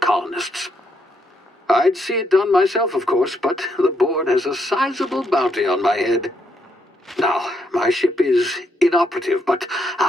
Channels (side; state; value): both; normal; correlation 0.76